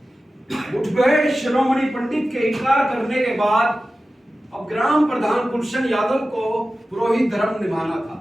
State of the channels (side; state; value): both; normal; correlation 0.95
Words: मुठभेड़ शिरोमणि पंडित के इनकार करने के बाद अब ग्राम प्रधान गुलशन यादव को पुरोहित धर्म निभाना था।